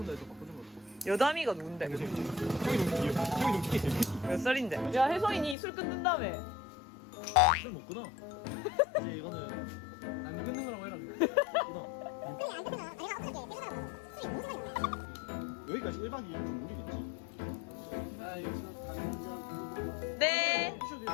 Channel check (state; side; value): drops out; right; at 5.6 s